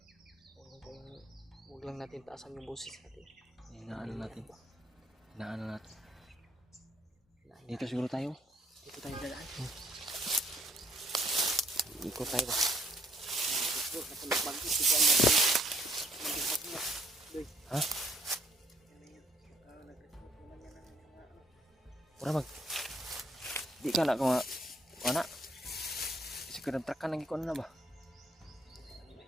Huwag lang natin taasan yung boses natin. Inaano natin. Inaano natin. Dito siguro tayo. Dito tayo dadaan. Ikot tayo ba? Ha? Ura mag. Di ka na ko nga. Wala. Kasi kadang-trakan nang ikon na ba?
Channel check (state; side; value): normal; both; correlation 0.64